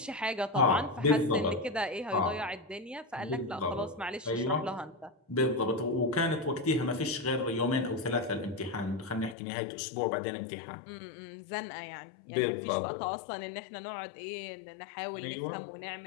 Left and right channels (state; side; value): drops out; right; at 9.3 s